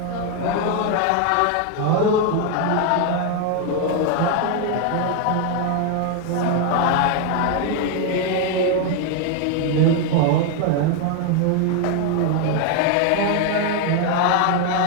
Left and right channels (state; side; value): different; both; correlation 0.01